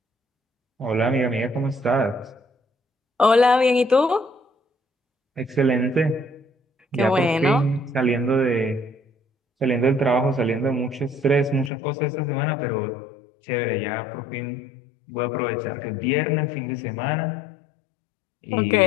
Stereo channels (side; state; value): right; drops out; at 11.7 s